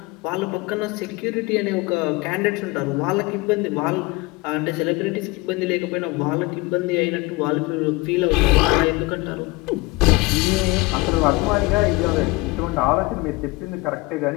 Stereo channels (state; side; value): quieter; right; 23.0 dB